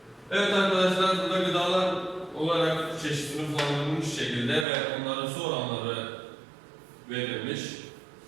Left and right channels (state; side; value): drops out; left; at 4.7 s